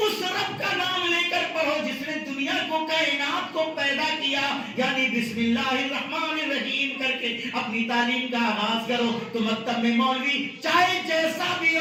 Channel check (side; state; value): both; identical; correlation 1.00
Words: رب کا نام لے کر پڑھو جس نے دنیا کو, کائنات کو پیدا کیا, یعنی بسم اللہ الرحمن الرحیم کر کے اپنی تعلیم کا آغاز کرو. تو مکتب میں مولوی چاہے جیسا بھی